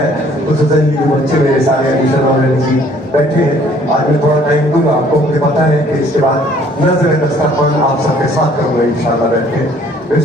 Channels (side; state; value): both; normal; correlation 0.59